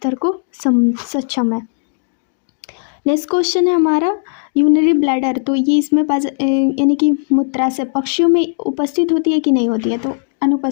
को सक्षम है। नेक्स्ट क्वेश्चन है हमारा यूरिनरी ब्लैडर। तो ये इसमें यानी कि मूत्राशय पक्षियों में उपस्थित होती है कि नहीं होती है? तो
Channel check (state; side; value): silent; right; digital silence